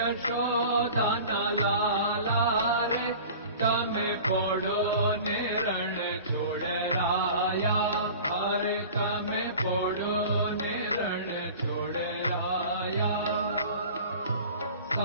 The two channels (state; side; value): inverted; both; correlation -0.40